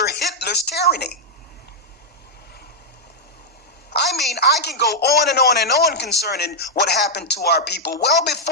Hitler's tyranny. I mean, I can go on and on and on concerning what happened to our people well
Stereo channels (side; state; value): both; normal; correlation -0.03